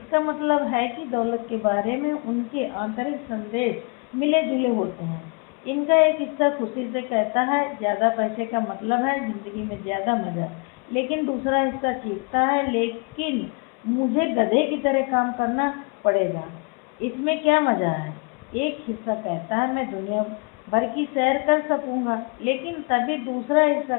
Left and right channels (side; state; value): right; quieter; 33.9 dB